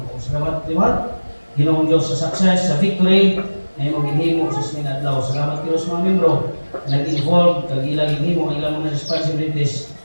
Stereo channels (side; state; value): both; inverted; correlation -1.00